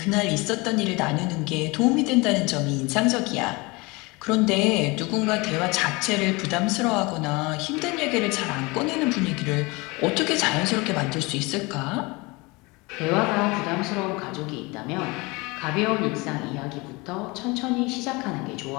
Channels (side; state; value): right; quieter; 25.1 dB